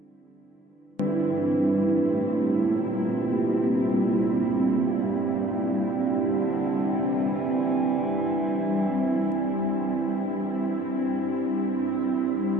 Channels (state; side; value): normal; both; correlation 0.56